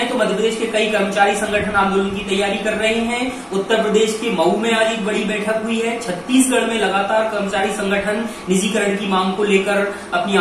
तो मध्य प्रदेश के कई कर्मचारी संगठन आंदोलन की तैयारी कर रहे हैं। उत्तर प्रदेश के मऊ में आज एक बड़ी बैठक हुई है। छत्तीसगढ़ में लगातार कर्मचारी संगठन निजीकरण की मांग को लेकर अपनी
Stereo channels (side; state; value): both; identical; correlation 1.00